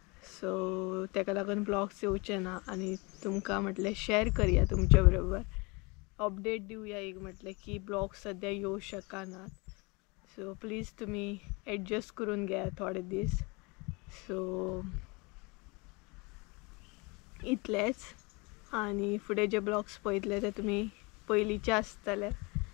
सो तेका लागून ब्लॉग्स येवचे ना, आनी तुमकां म्हटलें शेअर करया तुमच्या बरोबर, अपडेट दिवया एक म्हटलें की ब्लॉग्स सद्या येवं शकनात। सो प्लीज तुमी एडजस्ट करून घेया थोडे दीस। सो इतलेंच, आनी फुडें जे ब्लॉग्स पळयतले ते तुमी पयलींचे आसतले।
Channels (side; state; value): right; quieter; 27.9 dB